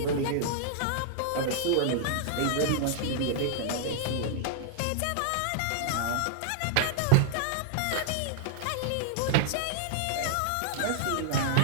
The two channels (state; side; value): different; both; correlation -0.01